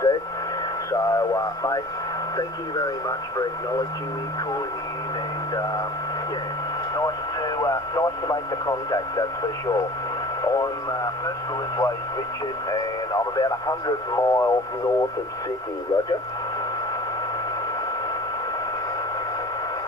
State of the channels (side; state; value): both; normal; correlation 0.42